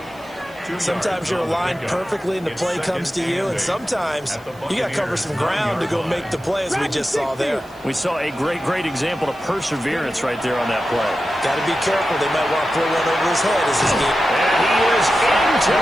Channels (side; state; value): left; noise; hiss, 28 dB below the sound